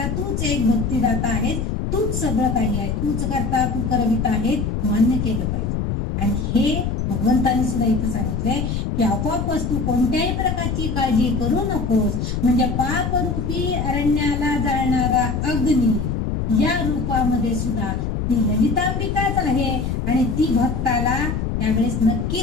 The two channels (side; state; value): left; noise; rumble, 1 dB below the sound